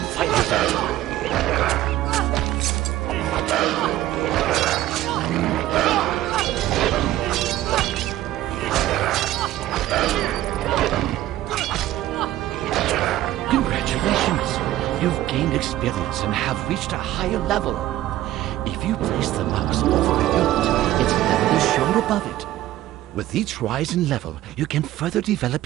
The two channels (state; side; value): quieter; left; 14.5 dB